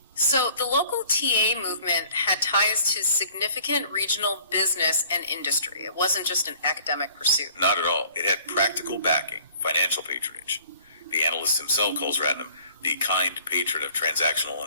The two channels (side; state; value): both; inverted; correlation -0.54